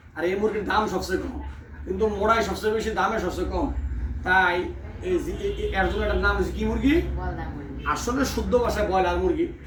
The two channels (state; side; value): identical; both; correlation 1.00